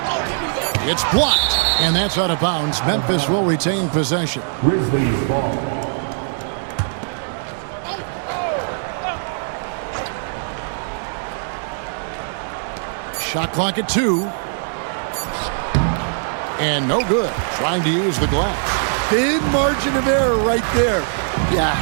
It's blocked, and that's out of bounds. Memphis will retain possession. Grizzlies ball. Shot clock at 2. And no good. Trying to use the glass. Big margin of error right there. You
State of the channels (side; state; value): left; silent; digital silence